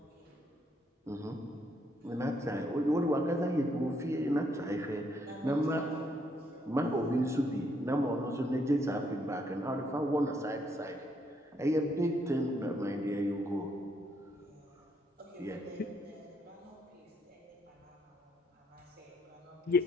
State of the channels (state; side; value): normal; both; correlation 0.72